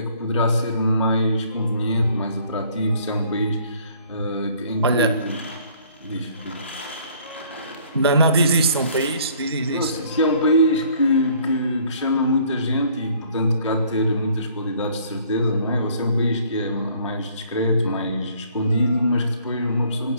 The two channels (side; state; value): both; inverted; correlation -0.59